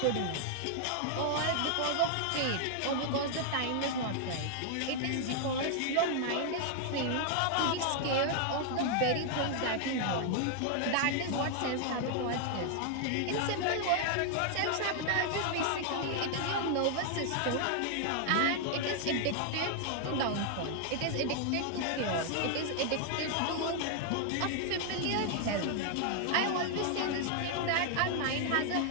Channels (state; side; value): different; both; correlation 0.00